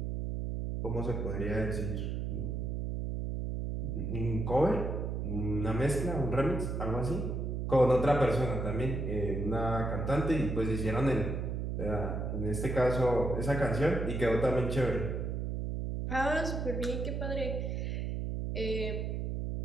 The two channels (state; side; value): noise; right; hum, 2 dB below the sound